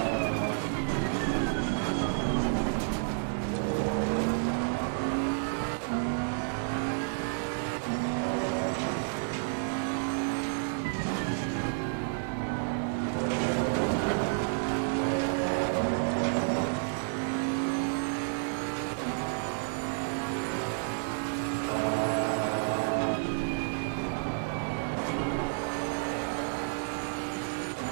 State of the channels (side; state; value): left; silent; digital silence